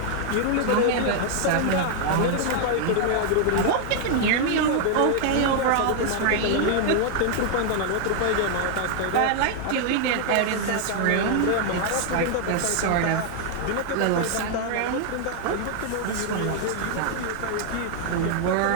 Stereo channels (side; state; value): both; different; correlation 0.00